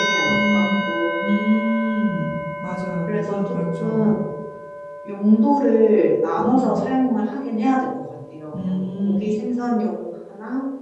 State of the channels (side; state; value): both; identical; correlation 1.00